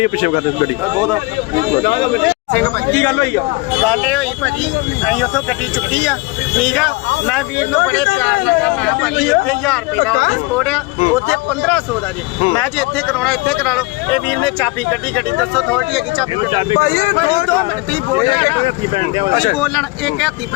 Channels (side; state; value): right; quieter; 23.8 dB